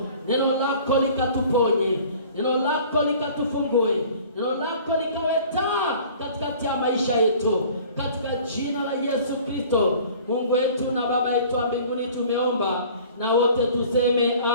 Neno lako likatuponye, neno lako likatufungue, neno lako likawe taa katikati ya maisha yetu katika jina la Yesu Kristo. Mungu wetu na Baba yetu wa mbinguni, tumeomba na wote tuseme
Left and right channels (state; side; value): inverted; both; correlation -0.48